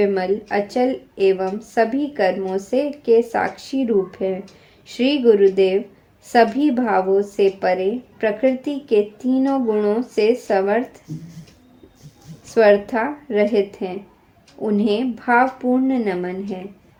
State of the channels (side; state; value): both; identical; correlation 1.00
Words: अचल एवं सभी कर्मों से के साक्षी रूप है। श्री गुरुदेव सभी भावों से परे, प्रकृति के तीनों गुणों से स्वर्था रहित हैं। उन्हें भावपूर्ण नमन है।